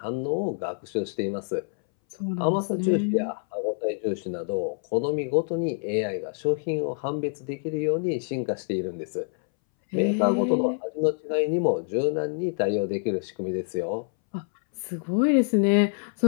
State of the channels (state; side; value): silent; right; 61 dB below the other